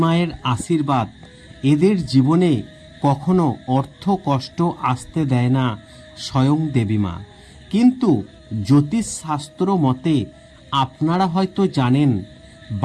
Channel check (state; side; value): identical; both; correlation 1.00